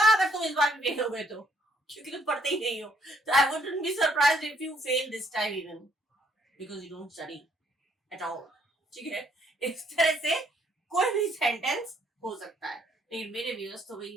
अगर तुम इस बार भी फेल हो गए तो, क्योंकि तुम पढ़ते ही नहीं हो। तो I wouldn't be surprised if you fail this time even because you don't study at all. ठीक है, इस तरह से कोई भी सेंटेंस हो सकता है, लेकिन मेरे व्यूअर्स तो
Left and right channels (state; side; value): normal; both; correlation 0.67